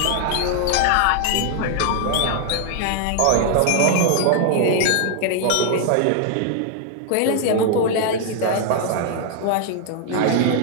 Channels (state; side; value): different; both; correlation 0.00